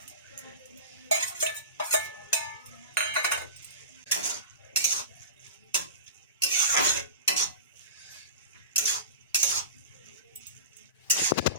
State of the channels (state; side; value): inverted; both; correlation -0.31